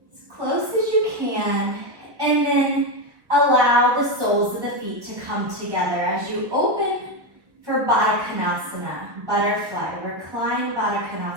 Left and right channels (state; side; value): late; left; 1.1 ms